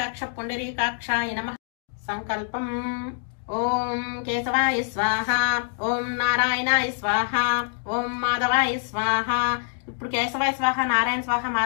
పుండరీకాక్షాయ నమః. సంకల్పం. ఓం కేశవాయ స్వాహ, ఓం నారాయణాయ స్వాహ, ఓం మాధవాయ స్వాహ. ఇప్పుడు కేశవాయ స్వాహ, నారాయణ స్వాహ,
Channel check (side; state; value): right; silent; digital silence